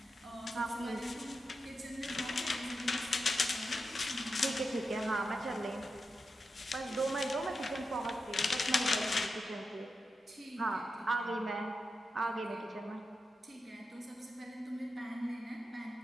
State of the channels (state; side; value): normal; both; correlation 0.89